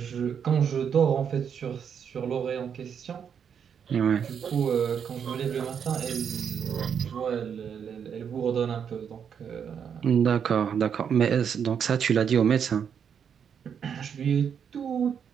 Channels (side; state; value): left; quieter; 7.6 dB